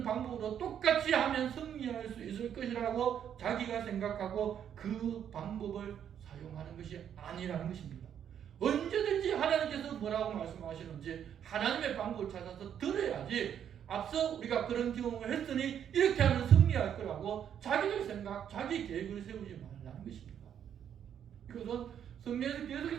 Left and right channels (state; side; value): quieter; left; 9.1 dB